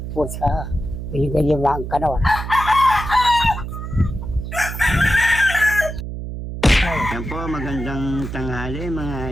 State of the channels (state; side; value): noise; right; hum, 7 dB below the sound